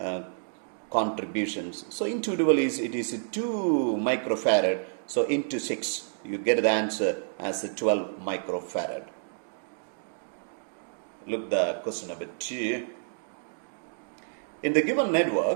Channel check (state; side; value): silent; left; digital silence